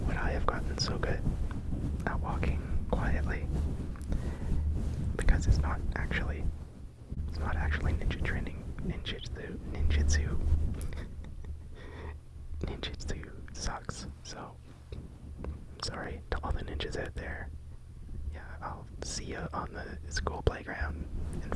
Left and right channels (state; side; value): identical; both; correlation 1.00